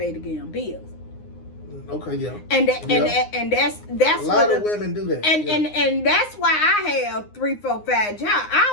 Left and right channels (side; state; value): right; late; 9.7 ms